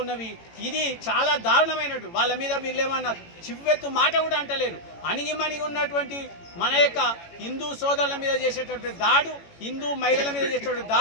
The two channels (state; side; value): late; right; 18 ms